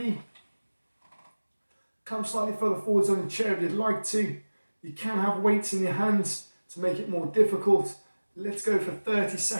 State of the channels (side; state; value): both; inverted; correlation -1.00